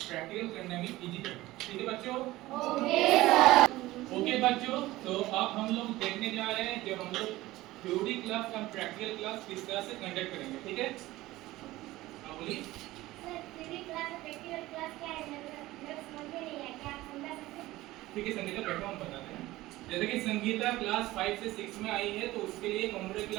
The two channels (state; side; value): quieter; left; 17.7 dB